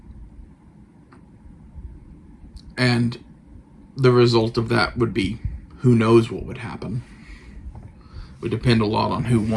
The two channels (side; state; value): both; identical; correlation 1.00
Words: And the result of that would be, who knows what would happen. It would depend a lot on who